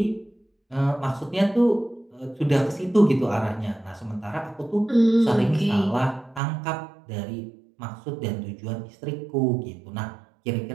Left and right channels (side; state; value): left; drops out; at 6.4 s